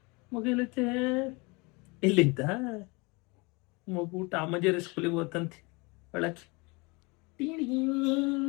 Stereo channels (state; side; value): quieter; right; 27.4 dB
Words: ಮಗು ಇಲ್ಲೈತೆ? ಇಲ್ಲಿದ್ದ ಮಗು ಟಾಮಜೇರಿ ಸ್ಕೂಲಿಗೆ ಹೋತಂತೆ ಒಳಕ್ಕೆ.